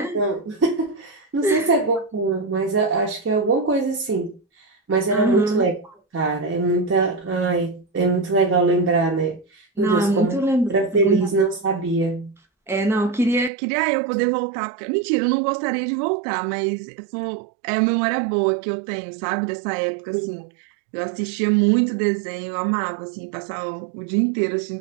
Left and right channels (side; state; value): left; drops out; at 13.5 s